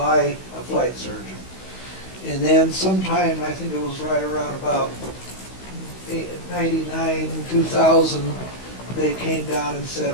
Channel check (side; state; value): right; late; 16 ms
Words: a flight surgeon. And then sometime, I think it was right around about 99, 2000, they came down and said,